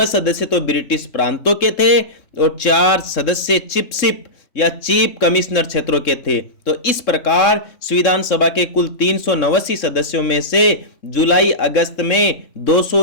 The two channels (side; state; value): right; late; 3.6 ms